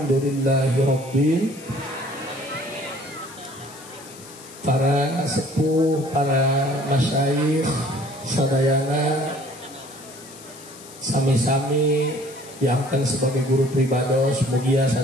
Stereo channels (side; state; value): left; noise; hiss, 18 dB below the sound